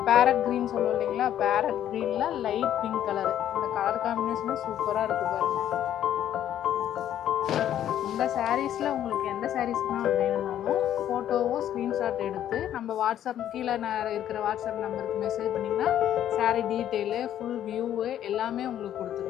பேரட் க்ரீன் சொல்லுவோம் இல்லைங்களா, பேரட் க்ரீனில் லைட் பிங்க் கலரு. இந்த கலர் காம்பினேஷனே சூப்பராக இருக்குது பாருங்கள். இந்த சாரீஸில் உங்களுக்கு எந்த சாரீஸ்னால் வேணும்னாலும் ஃபோட்டோவோ ஸ்க்ரீன்ஷாட் எடுத்து நம்ம வாட்ஸ்அப் கீழே இருக்கிற வாட்ஸ்அப் நம்பருக்கு மெசேஜ் பண்ணிங்கன்னா சாரீ டீட்டெயிலு ஃபுல் வியூவு எல்லாமே உங்களுக்கு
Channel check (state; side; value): quieter; right; 11.0 dB